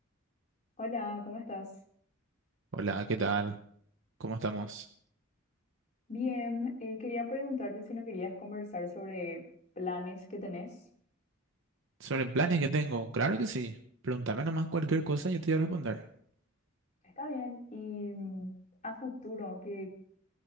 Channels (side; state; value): both; normal; correlation 0.26